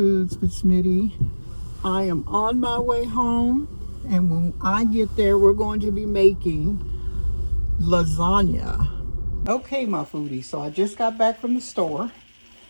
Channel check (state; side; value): inverted; both; correlation -1.00